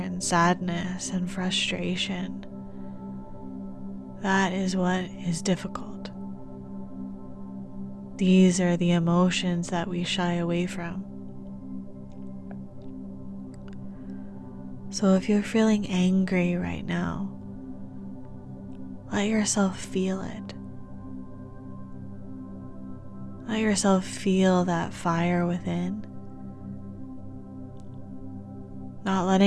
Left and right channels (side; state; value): both; identical; correlation 1.00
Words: sadness and frustration, that is what is difficult. These are the emotions that we shy away from. So if you're feeling angry right now, let yourself feel it. Let yourself feel that fire within, not